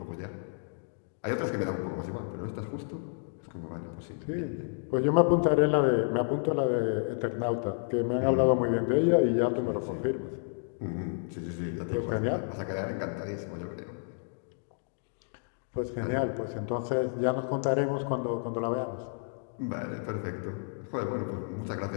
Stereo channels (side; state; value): right; silent; digital silence